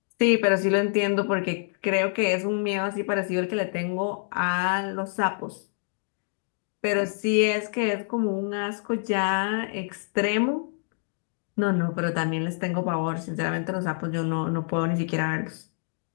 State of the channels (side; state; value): right; silent; 60 dB below the other